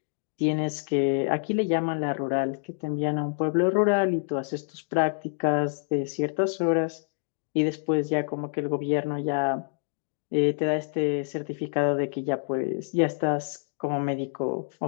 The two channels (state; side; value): silent; right; digital silence